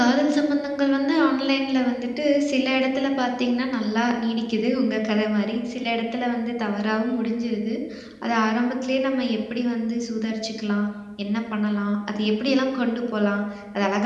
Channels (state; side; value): identical; both; correlation 1.00